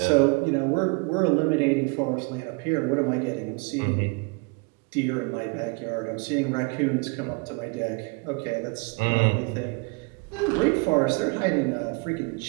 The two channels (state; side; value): quieter; left; 31.4 dB